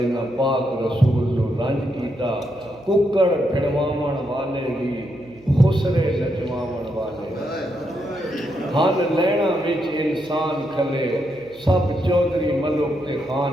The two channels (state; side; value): noise; right; hum, 27 dB below the sound